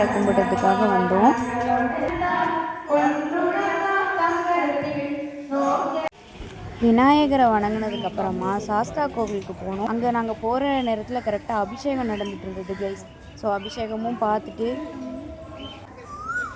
கும்பிட்றதுக்காக வந்தோம். விநாயகரை வணங்கினதுக்கப்புறமா சாஸ்தா கோவிலுக்கு போனோம். அங்கே நாங்கள் போகிற நேரத்தில் கரெக்டாக அபிஷேகம் நடந்துகிட்டு இருந்தது கைஸ். ஸோ அபிஷேகமும் பார்த்துட்டு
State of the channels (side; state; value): both; identical; correlation 1.00